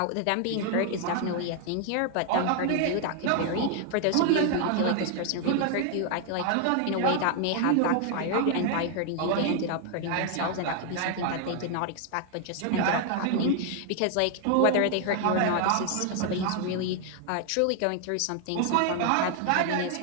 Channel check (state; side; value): different; both; correlation 0.00